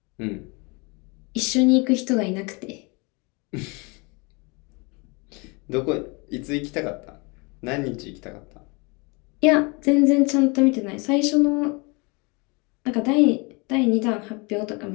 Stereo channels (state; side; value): quieter; right; 29.2 dB